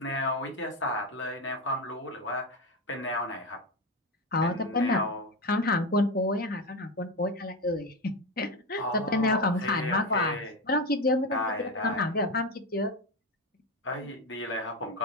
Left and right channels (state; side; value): normal; both; correlation 0.15